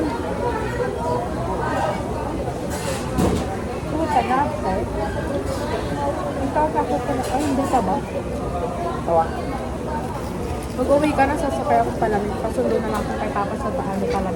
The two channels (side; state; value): both; identical; correlation 1.00